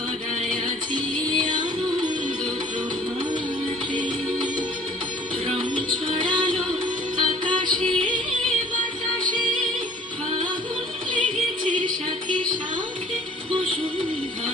আজি আনন্দ প্রভাতে রং ছড়ালো আকাশে বাতাসে ফাগুন লেগেছে সাথে সাথে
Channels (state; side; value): normal; both; correlation 0.51